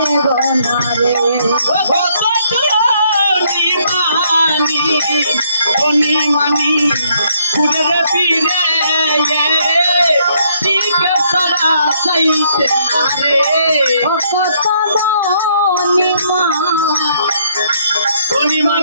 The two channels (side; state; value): both; inverted; correlation -0.69